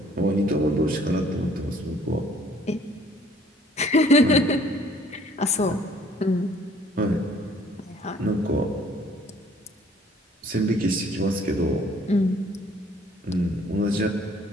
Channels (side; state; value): both; normal; correlation 0.57